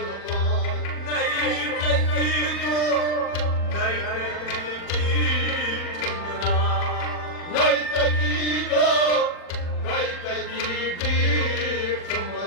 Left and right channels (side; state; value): right; late; 40 ms